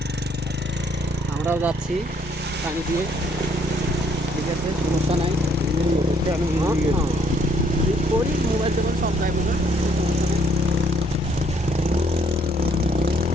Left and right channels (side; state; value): both; normal; correlation 0.66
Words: আমরাও যাচ্ছি পানি দিয়ে, ঠিক আছে, সমস্যা নাই। করি মোবাইল টোবাইল সব যাইব না, সমস্যা নেই।